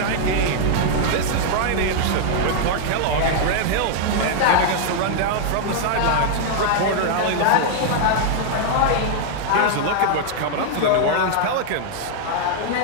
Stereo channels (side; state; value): both; different; correlation -0.01